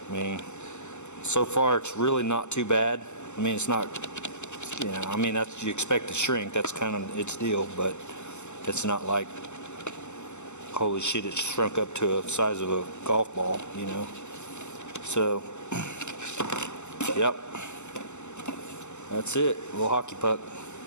I mean, so far it's really not too bad. I mean, it's not, you know, I mean, that's, you expect to shrink. That's kind of its deal, but it's not like, holy shit, it's shrunk up to the size of a golf ball, you know. So, yep, that's it. A little hockey puck.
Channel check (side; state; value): right; late; 0.83 ms